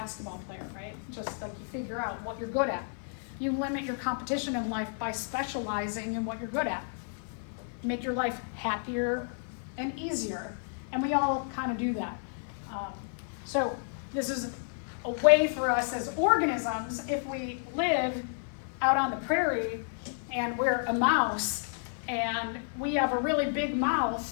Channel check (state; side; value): silent; right; 57 dB below the other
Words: player, right? Just like you figure out what you're good at. You limit your competition in life by specializing in what you're good at. Make your life happier and easier. And we all kind of do that. So this is a way for us as organisms, if we live out on the prairie and we're a mouse and we have a really big